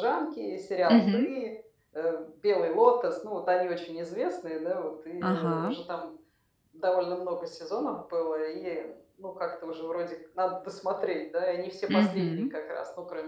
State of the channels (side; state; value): both; identical; correlation 1.00